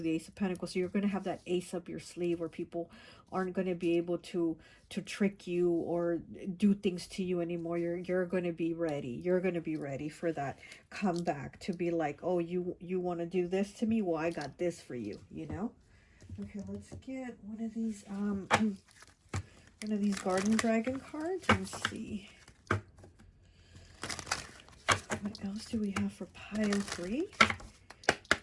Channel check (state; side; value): identical; both; correlation 1.00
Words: the Ace of Pentacles, so you're going to have that ace up your sleeve where people aren't going to be able to trick you or do things to you anymore. You're going to be ready. You're going to be ready for that comeback, to be like, oh, you want to do this to me? Well, I got this for you, you know? Okay, let's get one of these Garden Dragon cards and see what else do we have for pile 3